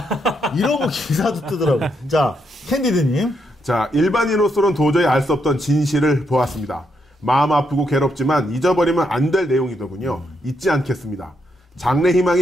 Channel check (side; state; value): both; normal; correlation 0.78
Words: 이러고 기사도 뜨더라고요. 자, 캔디드님. 자, 일반인으로서는 도저히 알 수 없던 진실을 보았습니다. 마음 아프고 괴롭지만 잊어버리면 안 될 내용이더군요. 잊지 않겠습니다.